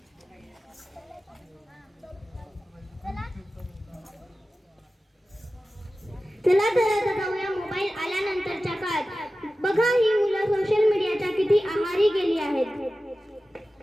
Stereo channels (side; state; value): both; normal; correlation 0.95